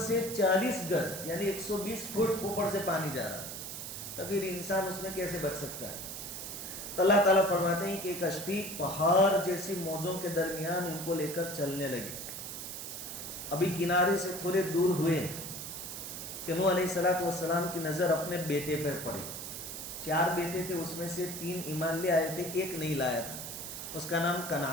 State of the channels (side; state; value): right; noise; hiss, 7 dB below the sound